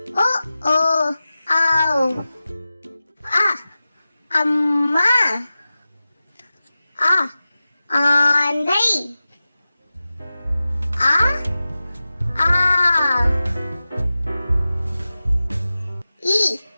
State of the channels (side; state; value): both; inverted; correlation -0.95